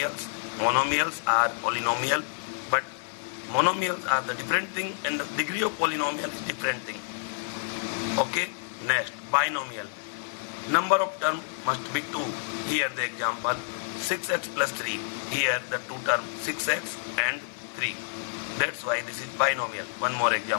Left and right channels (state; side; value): silent; right; 59 dB below the other